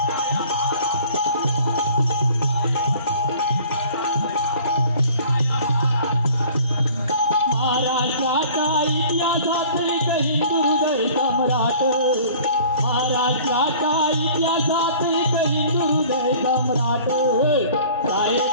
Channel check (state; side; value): inverted; both; correlation -0.49